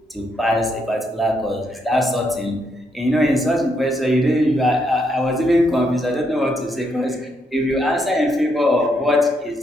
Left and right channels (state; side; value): normal; both; correlation 0.77